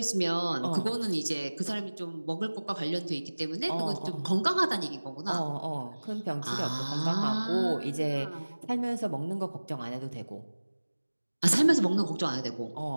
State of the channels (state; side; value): inverted; both; correlation -1.00